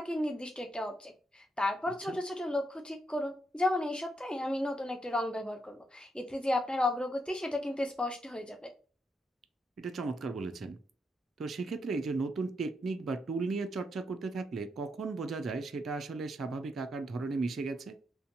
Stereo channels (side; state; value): both; normal; correlation 0.80